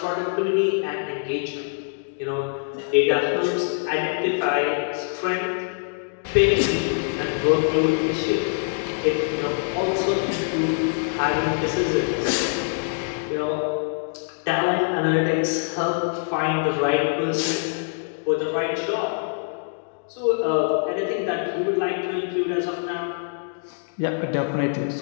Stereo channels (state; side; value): silent; right; digital silence